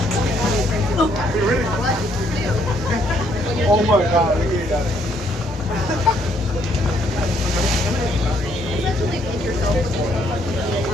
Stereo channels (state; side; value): normal; both; correlation 0.69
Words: Oh my God, look at that.